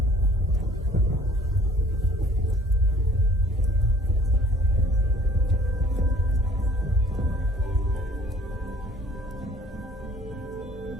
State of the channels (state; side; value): normal; both; correlation 0.54